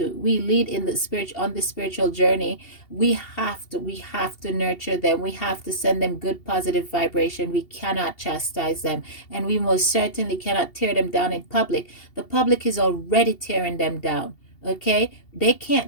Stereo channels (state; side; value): late; right; 2.8 ms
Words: the spirit on the spiritual journey. We have to nurture them. We have to send them good positive vibration. We cannot chastise them, and we most certainly cannot tear them down in public. The public is already tearing them down. Okay, they